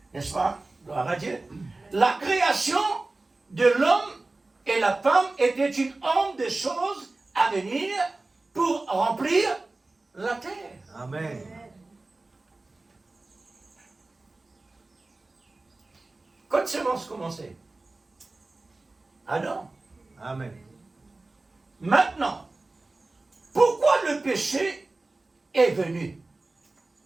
N'est-ce pas? Gloire à Dieu. La création de l'homme et la femme était une ombre de choses à venir pour remplir la terre. Amen. Quand semence commençait? Adam. Amen. Maintenant, pourquoi le péché est venu?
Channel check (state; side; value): quieter; left; 3.2 dB